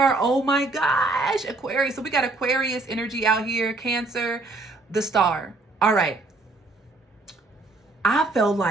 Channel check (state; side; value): quieter; left; 3.2 dB